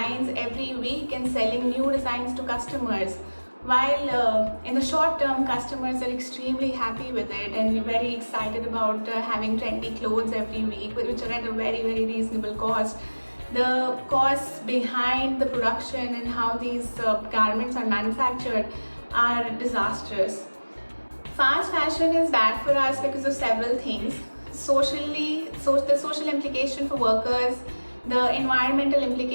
every week and selling new designs to customers. While in the short term, customers are extremely happy with it and very excited about having trendy clothes every week, which are at a very, very reasonable cost. The costs behind the production and how these garments are manufactured are disastrous. Fast fashion is bad for us because of several things. Socially, the social implication for workers, the environmental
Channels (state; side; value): inverted; both; correlation -1.00